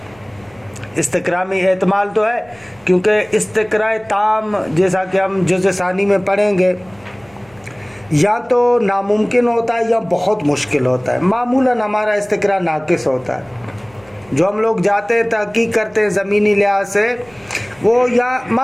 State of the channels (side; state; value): right; noise; hum, 28 dB below the sound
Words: استقرا میں احتمال تو ہے، کیونکہ استقرا تام جیسا کہ ہم جزء ثانی میں پڑھیں گے یا تو ناممکن ہوتا ہے یا بہت مشکل ہوتا ہے۔ معمولاً ہمارا استقرا ناقص ہوتا ہے، جو ہم لوگ جاتے ہیں تحقیق کرتے ہیں زمینی لحاظ سے، وہ یا